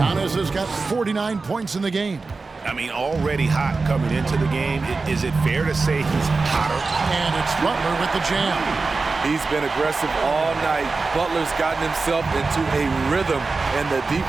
has got 49 points in the game. I mean, already hot coming into the game. Is it fair to say he's hotter? And it's Butler with the jam. He's been aggressive all night. Butler's gotten himself into a rhythm, and the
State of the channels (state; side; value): quieter; left; 4.0 dB